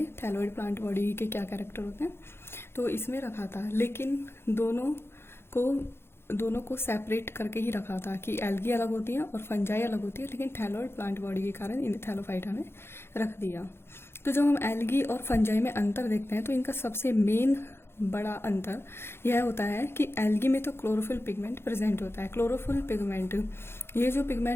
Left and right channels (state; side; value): late; right; 0.12 ms